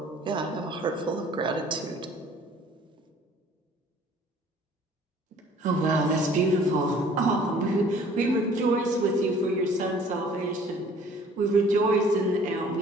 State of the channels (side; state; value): both; normal; correlation 0.53